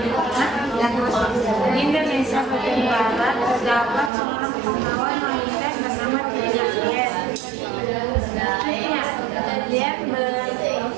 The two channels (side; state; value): left; drops out; at 4.1 s